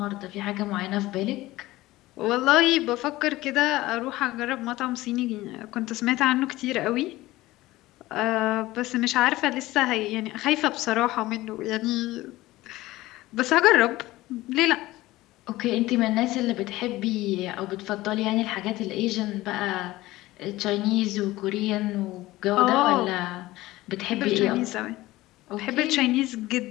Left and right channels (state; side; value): quieter; right; 17.8 dB